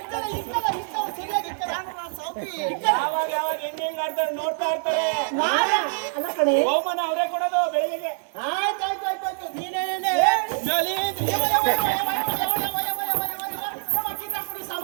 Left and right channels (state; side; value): silent; left; digital silence